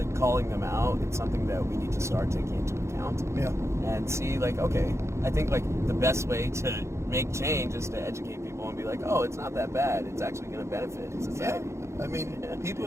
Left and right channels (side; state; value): left; late; 0.14 ms